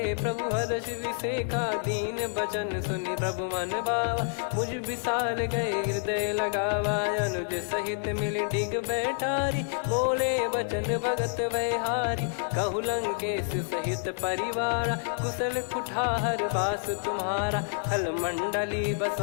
प्रभु हर्ष विसेखा, दीन बचन सुनि प्रभु मन भावा। मुझ विशाल गए हृदय लगावा, अनुज सहित मिल डिग बैठारी। बोले बचन भगत भयहारी, कहु लंकेश सहित परिवारा। कुशल कुठार बास तुम्हारा, खल मंडली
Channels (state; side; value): silent; right; digital silence